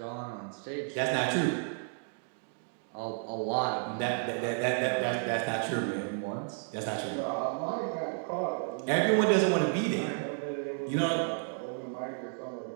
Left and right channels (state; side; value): silent; left; 56 dB below the other